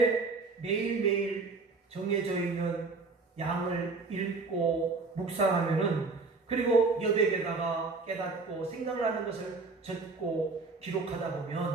매일매일 정해져 있는 양을 읽고 묵상하면은 그리고 여백에다가 깨닫고 생각나는 것을 적고 기록하다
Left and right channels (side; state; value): left; quieter; 4.0 dB